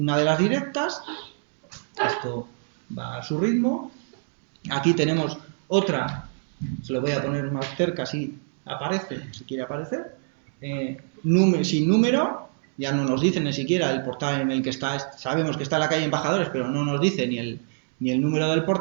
de las directas, esto va a su ritmo. Aquí tenemos otra, se lo voy a poner más cerca si aparece, si quiere aparecer, sin número, ya no nos dice ni siquiera el portal en el que está, sabemos que está en la calle Embajadores, pero no nos dice ni el número del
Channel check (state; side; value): silent; left; digital silence